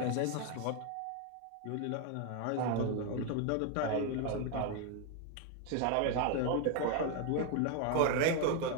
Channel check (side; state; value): both; different; correlation 0.01